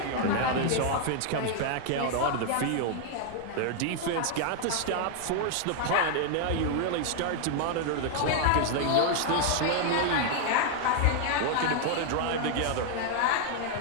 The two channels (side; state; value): both; different; correlation 0.00